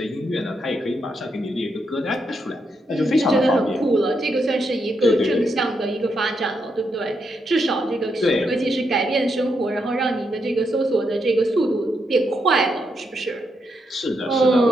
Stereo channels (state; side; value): normal; both; correlation 0.80